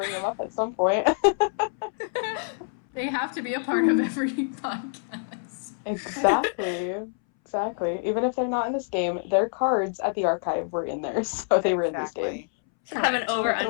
them up at some point. They have to be a part of every podcast. Exactly. Even if they're not in this game, their cards at the archive were in there, so they were in this game. Should have an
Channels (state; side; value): silent; right; 61 dB below the other